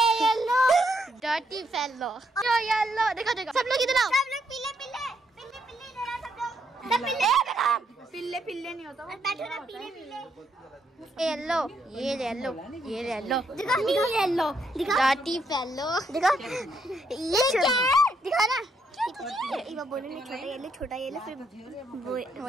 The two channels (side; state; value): both; normal; correlation 0.75